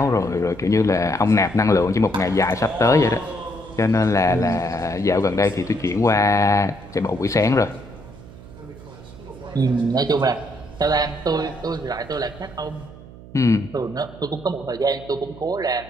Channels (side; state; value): right; noise; hum, 18 dB below the sound